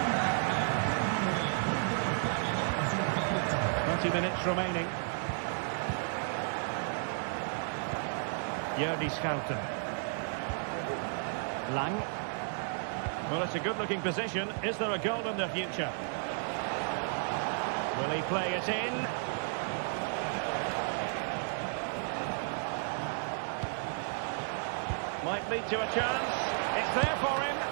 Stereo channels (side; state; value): left; silent; digital silence